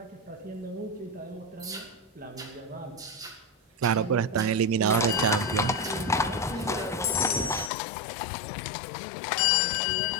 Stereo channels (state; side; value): drops out; right; at 7.7 s